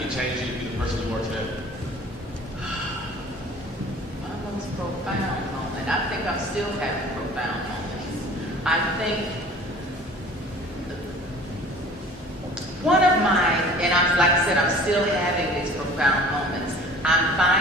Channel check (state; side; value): normal; both; correlation 0.46